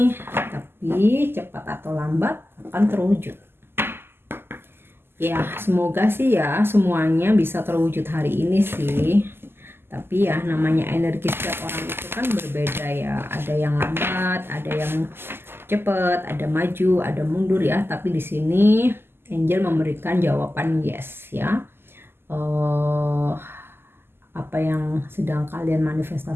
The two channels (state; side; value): late; left; 0.11 ms